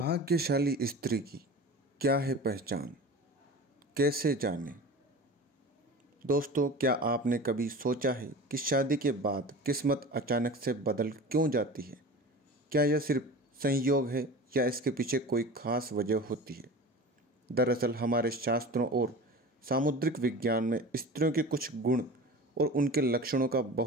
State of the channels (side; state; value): both; normal; correlation 0.35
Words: स्त्री की क्या है पहचान, कैसे जाने। दोस्तों, क्या आपने कभी सोचा है कि शादी के बाद किस्मत अचानक से बदल क्यों जाती है? क्या यह सिर्फ संयोग है या इसके पीछे कोई खास वजह होती है? दरअसल हमारे शास्त्रों और सामुद्रिक विज्ञान में स्त्रियों के कुछ गुण और उनके लक्षणों का